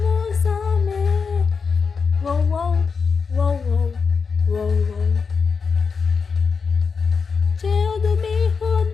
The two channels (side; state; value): right; quieter; 5.3 dB